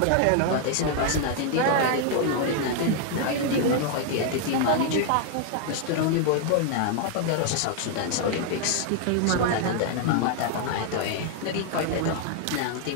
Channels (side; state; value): both; different; correlation 0.00